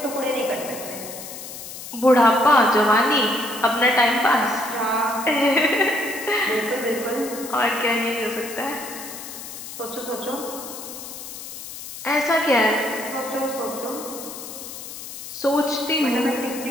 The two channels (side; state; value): left; noise; hiss, 11 dB below the sound